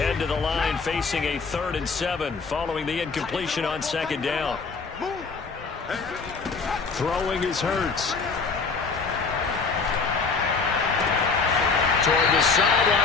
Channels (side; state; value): right; quieter; 4.7 dB